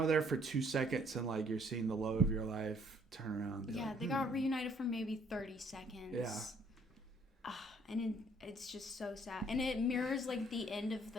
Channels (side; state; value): both; normal; correlation 0.63